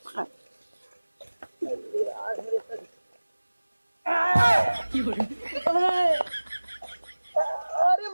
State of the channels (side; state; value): both; inverted; correlation -1.00